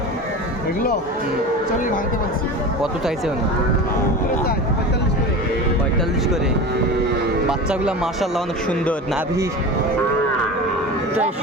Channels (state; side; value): normal; both; correlation 0.30